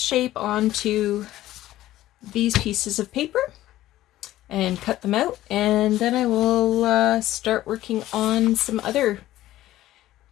onto these pieces of paper and cut them out, and then I will start working on some other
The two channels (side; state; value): right; quieter; 14.8 dB